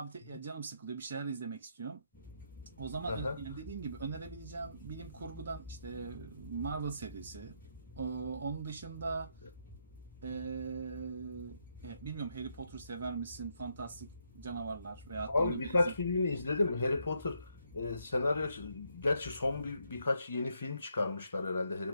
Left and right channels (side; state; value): both; inverted; correlation -0.77